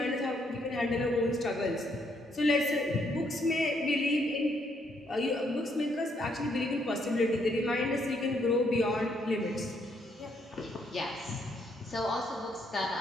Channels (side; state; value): both; normal; correlation 0.72